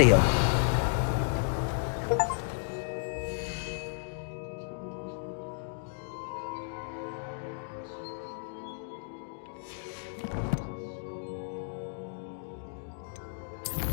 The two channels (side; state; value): right; silent; digital silence